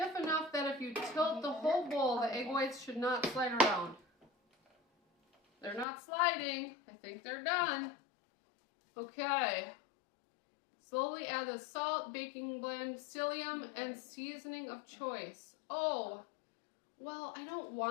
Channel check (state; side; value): drops out; right; at 5.9 s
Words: enough that if you tilt the whole bowl, the egg whites should not slide around. They're not sliding. I think they're done. Okay. Slowly add the salt, baking blend, psyllium, and seasoning of choice. Oh, well, I don't